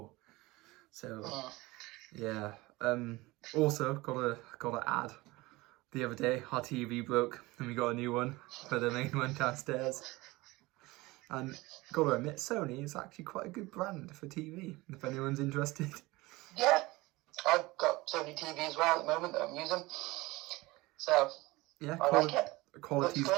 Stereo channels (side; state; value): left; quieter; 21.1 dB